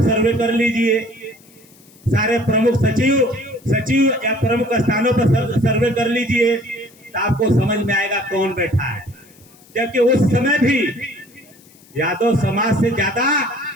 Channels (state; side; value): noise; left; hiss, 27 dB below the sound